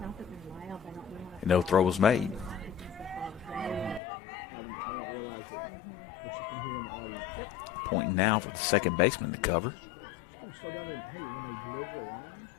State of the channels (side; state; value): right; drops out; at 4.0 s